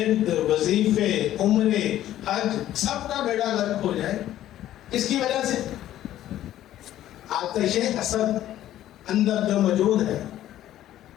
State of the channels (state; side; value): quieter; right; 12.9 dB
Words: وظیفے، عمرے، حج، سب کا بیڑا غرق ہو جائے. اس کی وجہ سے آتش حسد اندر جو موجود ہے،